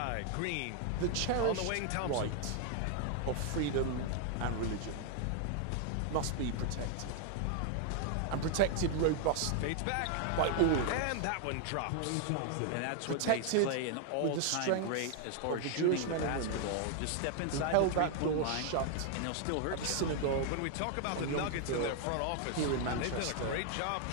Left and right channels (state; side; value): different; both; correlation 0.00